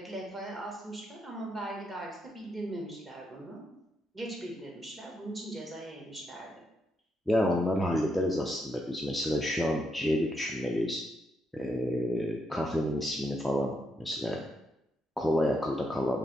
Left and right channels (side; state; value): both; normal; correlation 0.80